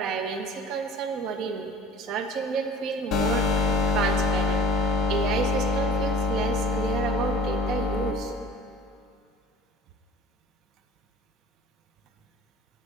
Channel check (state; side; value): normal; both; correlation 0.44